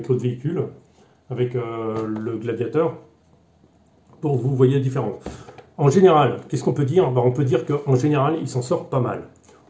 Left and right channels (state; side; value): identical; both; correlation 1.00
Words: l'autre véhicule, avec le Gladiator, pour que vous voyez la différence. En général, qu'est-ce qu'on peut dire? On peut dire qu'en général, il s'en sort pas mal.